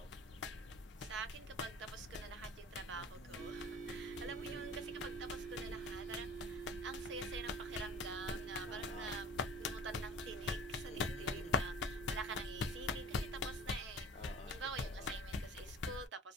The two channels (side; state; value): both; normal; correlation 0.42